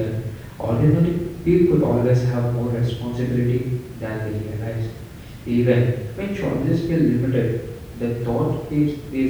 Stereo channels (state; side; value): identical; both; correlation 1.00